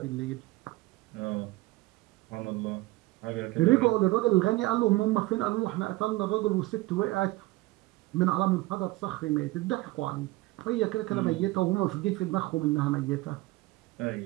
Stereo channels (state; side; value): quieter; left; 19.7 dB